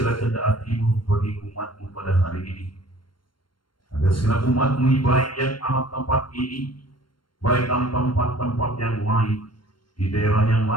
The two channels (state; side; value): late; right; 0.72 ms